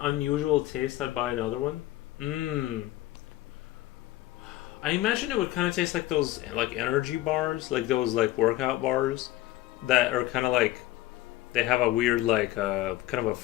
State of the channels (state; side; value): quieter; right; 16.1 dB